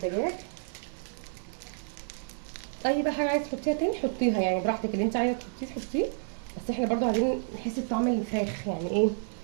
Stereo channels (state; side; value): silent; left; digital silence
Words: اي بقى حاجه عايزه تحطيها تاني حطيها يعني براحتك، اللي انت عايزه تحطيه. بس احنا برضو عايزين نحس بطعم الفراخ يعني ايه،